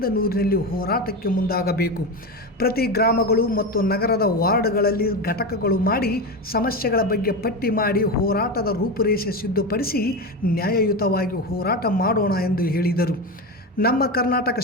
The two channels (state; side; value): normal; both; correlation 0.19